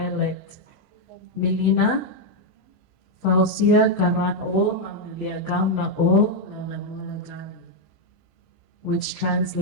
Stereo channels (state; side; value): normal; both; correlation 0.01